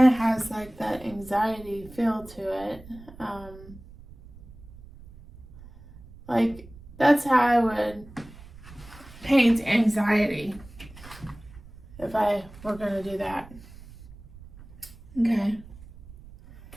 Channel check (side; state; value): right; noise; rumble, 19 dB below the sound